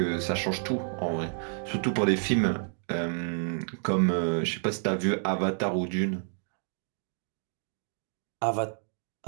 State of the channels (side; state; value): left; silent; digital silence